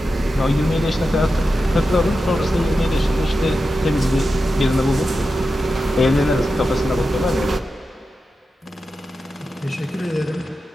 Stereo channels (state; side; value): normal; both; correlation 0.91